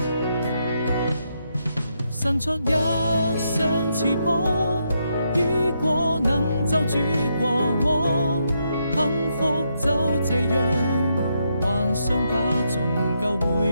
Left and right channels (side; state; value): both; inverted; correlation -0.79